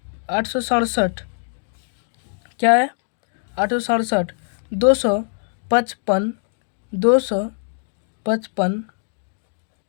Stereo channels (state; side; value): silent; right; digital silence